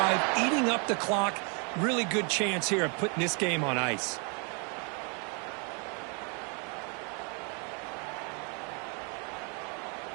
eating up the clock. Really good chance here of putting this game on ice.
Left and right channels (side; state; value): left; quieter; 35.9 dB